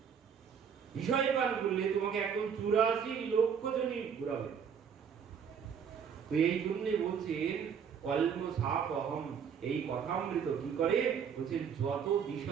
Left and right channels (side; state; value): left; quieter; 7.3 dB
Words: বিষয় পান করলে তোমাকে একদম 84 লক্ষ জনই ঘুরাবে। তো এই জন্য বলছেন কল্ম সাপহম, এই কথামৃত কি করে? বলছেন যত